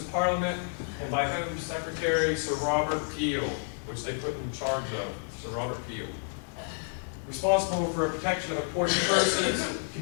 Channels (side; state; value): right; silent; digital silence